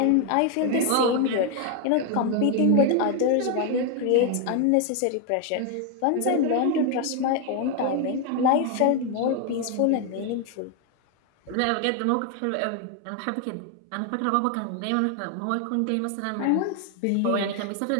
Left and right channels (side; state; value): both; different; correlation 0.01